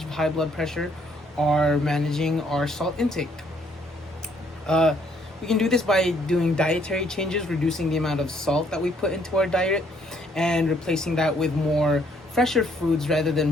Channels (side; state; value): both; normal; correlation 0.67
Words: high blood pressure are managing our salt intake. Uh, we can do this by doing dietary changes, reducing the amount of salt that we put into our diet, and replacing that with more fresher foods rather